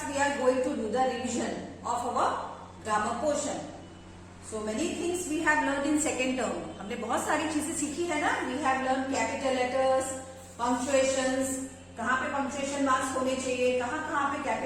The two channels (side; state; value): both; identical; correlation 1.00